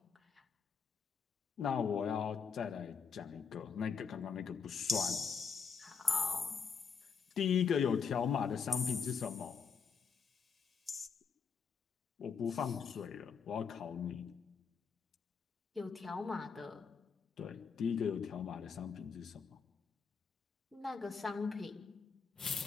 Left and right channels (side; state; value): right; quieter; 6.0 dB